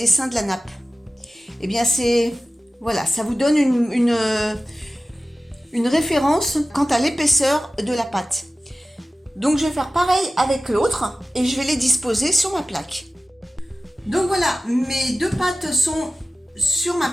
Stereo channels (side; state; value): both; normal; correlation 0.95